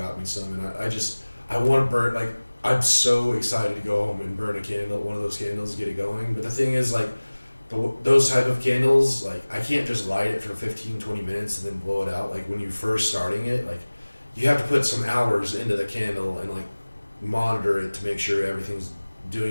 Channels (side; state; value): both; inverted; correlation -1.00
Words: me some, and I want to burn, like, I'm so excited to go home and burn a candle, one of those candles, get it going. But the thing is, like, those type of candles, like, I can't just light it for 15, 20 minutes and then blow it out. Like, when you're first starting it, like, you have to put some hours into the candle and, like, monitor it to make sure everything's